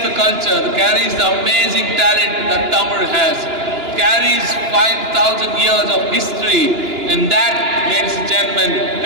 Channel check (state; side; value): late; left; 2.9 ms